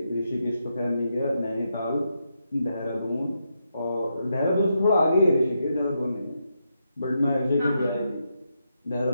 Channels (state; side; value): inverted; both; correlation -0.83